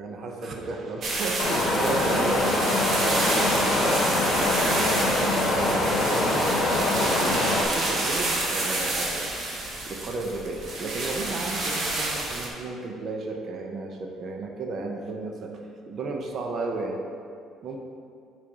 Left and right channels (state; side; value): normal; both; correlation 0.64